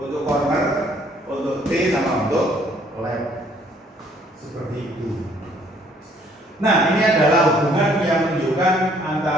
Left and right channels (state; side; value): normal; both; correlation 0.62